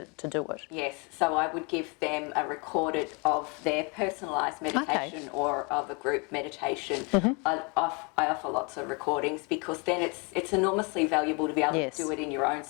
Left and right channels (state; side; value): quieter; right; 31.8 dB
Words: do it? Yes, so I would give them a recorded of their personalised meditation or of a group meditation. I offer lots of recordings because then it's enormously valuable to be able to do it in your own